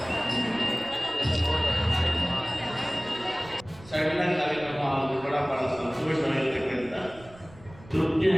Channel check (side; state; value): right; noise; rumble, 22 dB below the sound